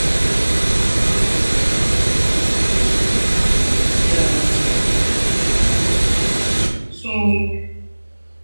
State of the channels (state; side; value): inverted; both; correlation -1.00